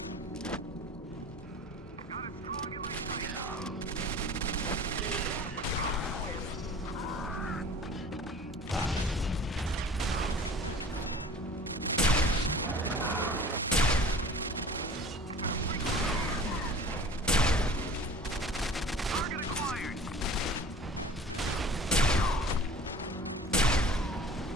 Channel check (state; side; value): normal; both; correlation 0.44